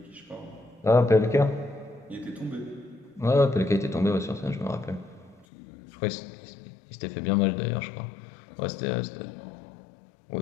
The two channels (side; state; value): right; drops out; at 5.5 s